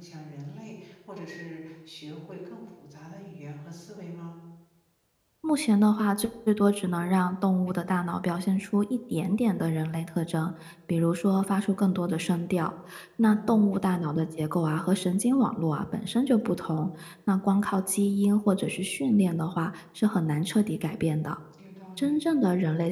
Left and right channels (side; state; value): both; identical; correlation 1.00